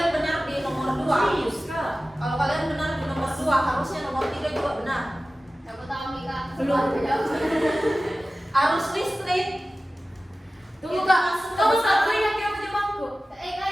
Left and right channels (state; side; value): normal; both; correlation 0.96